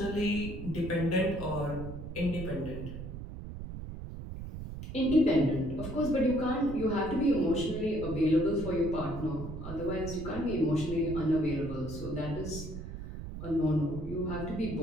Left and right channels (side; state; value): right; noise; rumble, 9 dB below the sound